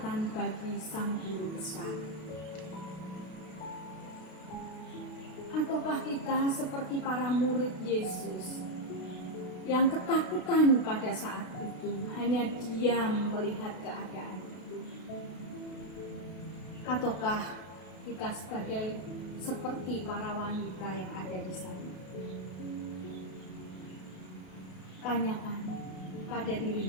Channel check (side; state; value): right; late; 33 ms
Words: bagi sang guru besar? Ataukah kita seperti para murid Yesus yang ketakutan pada saat itu, hanya diam melihat keadaan itu? Ataukah kita sebagai seperti para wanita yang ada di sana? Tanyakan pada